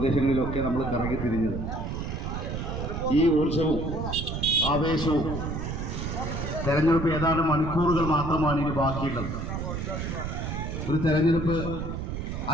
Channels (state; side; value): noise; right; rumble, 4 dB below the sound